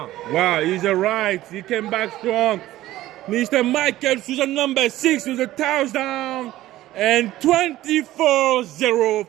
pass. Wow, he's all right. He came back strong. Mr. Michael Souza, number 6, with a touchdown. And 24-0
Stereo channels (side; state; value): left; quieter; 15.3 dB